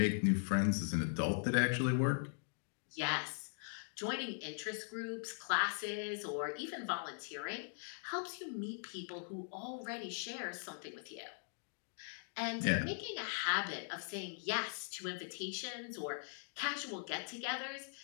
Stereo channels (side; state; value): right; silent; digital silence